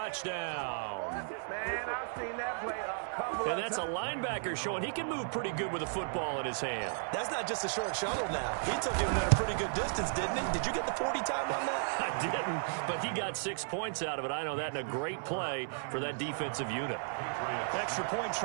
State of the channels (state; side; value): silent; left; 55 dB below the other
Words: Man, I've seen that play a couple of times. And that's a linebacker showing he can move pretty good with a football in his hand. That's not just a short shuttle now. He took him at a pretty good distance, didn't he? Did you get the 40 time on that? I didn't, but he got 6 points out of it. I know that, and a great play for that defensive unit. Extra point